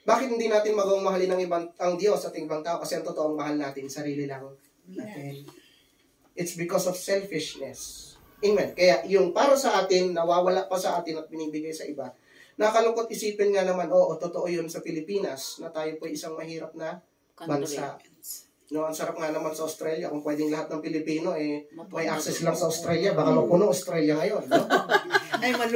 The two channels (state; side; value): identical; both; correlation 1.00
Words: Bakit hindi natin magawang mahalin ang Diyos at ibang tao? Kasi ang totoong mahal natin, sarili lang natin. It's because of selfishness. Amen. Kaya yung para sa atin, nawawala pa sa atin at binibigay sa iba. Nakalungkot isipin nga naman, totoo yun sa Pilipinas, na tayo po isang mahirap na bansa. No, ang sarap nga naman sa Australia, kung pwedeng lahat ng Pilipino, may access lang sa Australia, baka mapuno Australia ngayon. No? Ay,